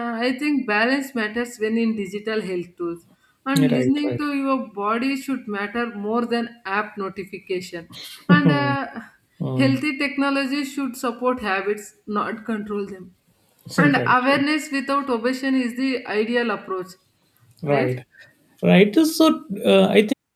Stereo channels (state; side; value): identical; both; correlation 1.00